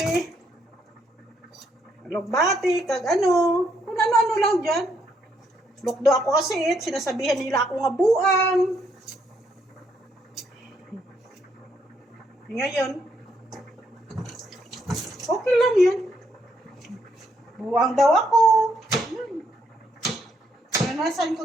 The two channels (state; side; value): normal; both; correlation 0.74